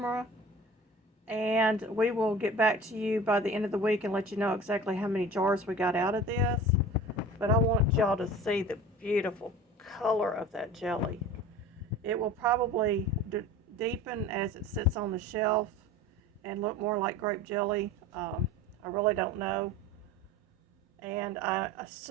and we will get back to you by the end of the week and let you know exactly how many jars we got out of this. But I want y'all to see the beautiful color of that jelly. It will probably deepen as it sits on the shelf and look more like grape jelly. I really don't know. And I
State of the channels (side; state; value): both; normal; correlation 0.39